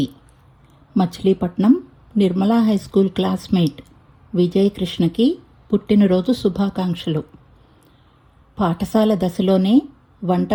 Machilipatnam Nirmala high school classmate Vijay కృష్ణకి పుట్టినరోజు శుభాకాంక్షలు. పాఠశాల దశలోనే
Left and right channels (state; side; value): identical; both; correlation 1.00